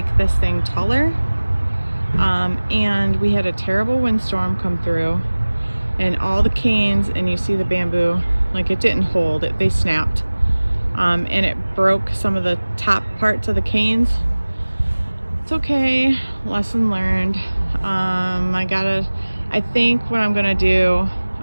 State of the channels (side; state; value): both; inverted; correlation -1.00